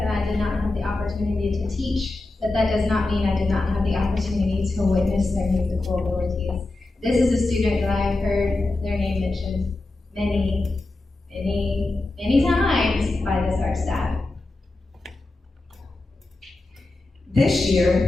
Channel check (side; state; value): right; quieter; 3.0 dB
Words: I did not have the opportunity to teach, but that does not mean I did not have the opportunity to witness their musical abilities. This is a student that I have heard their name mentioned many times by this art staff. This